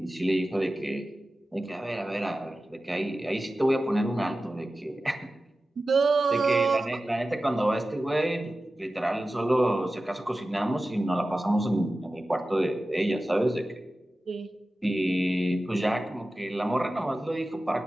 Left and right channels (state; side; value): normal; both; correlation 0.95